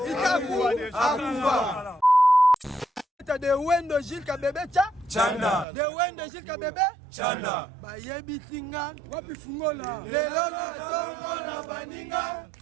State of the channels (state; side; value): drops out; left; at 5.7 s